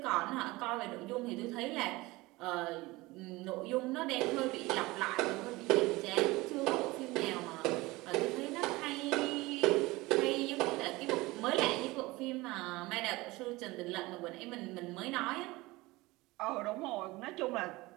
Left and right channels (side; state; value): left; quieter; 21.1 dB